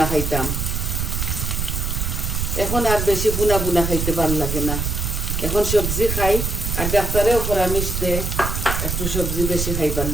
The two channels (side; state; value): right; noise; rumble, 1 dB below the sound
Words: খাইতাম। এখন আর বেশি বুনা বুনা খাইতে ভাল লাগে না, এখন সবজি খাই। আর ডাক্তারেও পরামর্শ দেয় একটু সবজি বেশি খাইবার